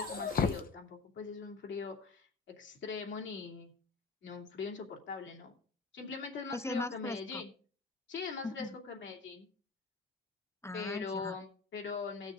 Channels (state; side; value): quieter; right; 4.2 dB